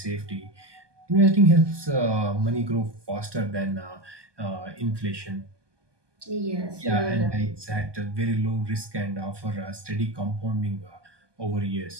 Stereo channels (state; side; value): late; left; 1.2 ms